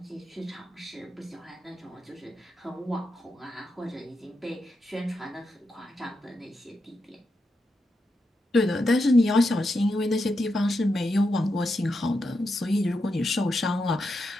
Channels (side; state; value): both; normal; correlation 0.86